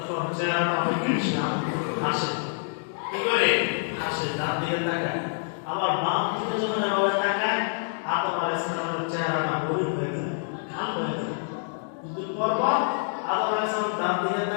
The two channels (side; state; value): right; silent; digital silence